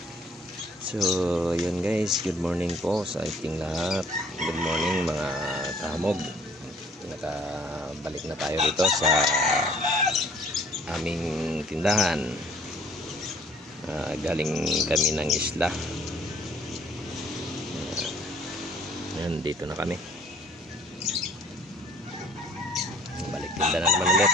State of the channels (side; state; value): both; normal; correlation 0.56